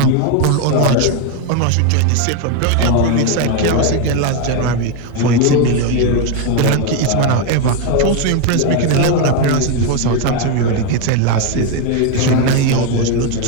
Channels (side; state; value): both; different; correlation 0.02